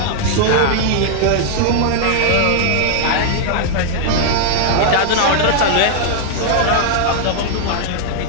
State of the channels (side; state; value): both; different; correlation -0.01